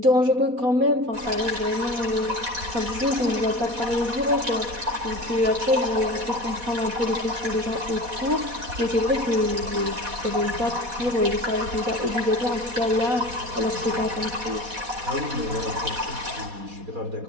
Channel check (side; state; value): left; late; 4.1 ms